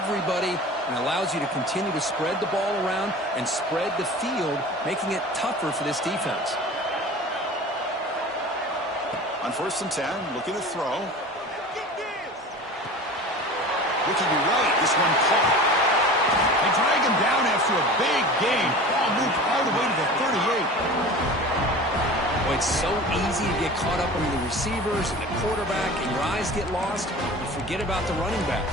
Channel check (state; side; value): normal; both; correlation 0.37